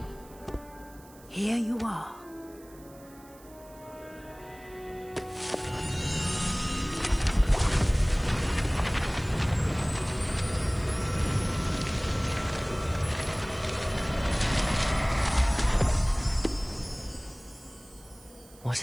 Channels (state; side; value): noise; right; hiss, 24 dB below the sound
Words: Here you are. What